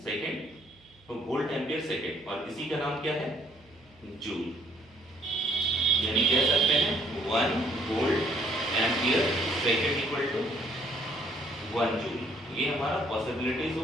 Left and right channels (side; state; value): right; noise; hum, 29 dB below the sound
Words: सेकंड. तो वोल्ट एम्पियर सेकंड, और इसी का नाम क्या है? जूल. यानी कह सकते हैं 1 volt ampere second equal to 1 joule. ये हमारा पॉसिबिलिटीज